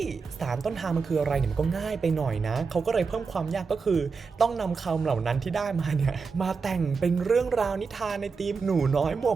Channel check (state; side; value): quieter; left; 5.0 dB